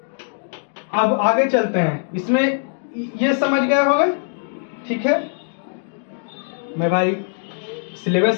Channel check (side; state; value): right; silent; digital silence